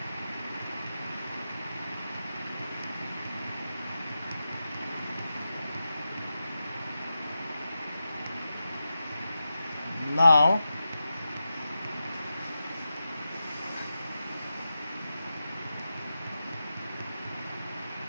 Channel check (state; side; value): inverted; both; correlation -0.90